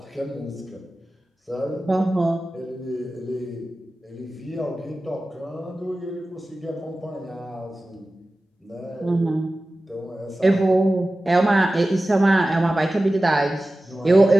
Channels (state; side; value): normal; both; correlation 0.96